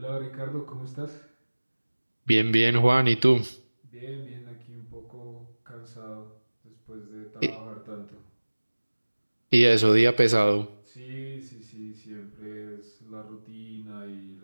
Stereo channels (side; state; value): both; inverted; correlation -1.00